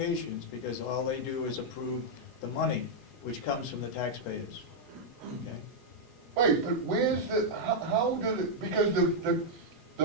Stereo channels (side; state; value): both; normal; correlation -0.03